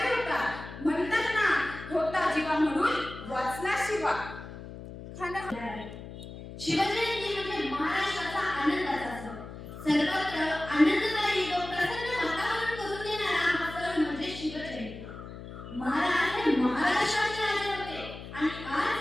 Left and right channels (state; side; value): noise; left; hum, 12 dB below the sound